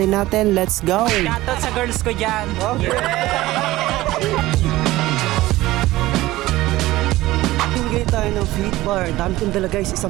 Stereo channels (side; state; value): left; quieter; 17.4 dB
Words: natin? Let's go! Shoutout sa girls ko dyan. Okay. Mamimigay tayo ng fit bar. Dami kong dala guys,